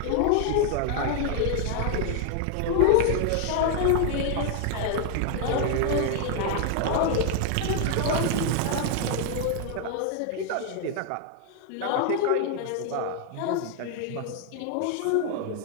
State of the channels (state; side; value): different; both; correlation 0.00